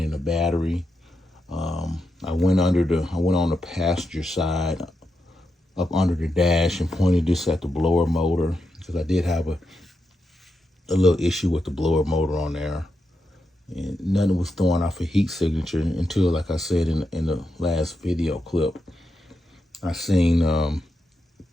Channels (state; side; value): normal; both; correlation 0.86